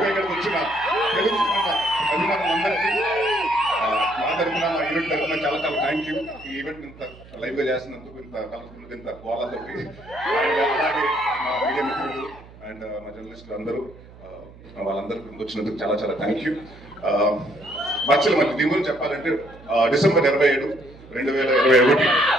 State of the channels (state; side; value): noise; right; hum, 21 dB below the sound